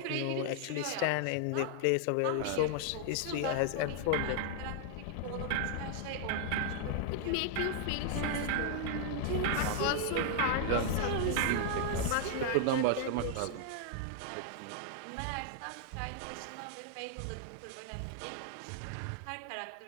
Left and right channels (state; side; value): different; both; correlation 0.00